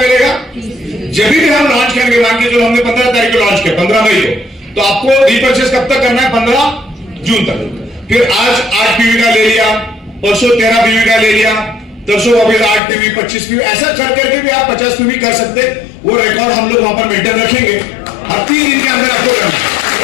जब भी हम लॉन्च करेंगे, मान के चलो हमने 15 तारीख को लॉन्च किया, 15 मई को, तो आपको रीपर्चेस कब तक करना है, 15 जून तक। फिर आज 8 पीवी का ले लिया, परसों 13 पीवी का ले लिया, तरसों वापिस 8 पीवी, 25 पीवी, ऐसा कर करके भी आप 50 पीवी कर सकते। वो रिकॉर्ड हम लोग वहां पर मेंटेन रखेंगे और 3 दिन के अंदर आपको करना है।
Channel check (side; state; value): right; drops out; at 12.8 s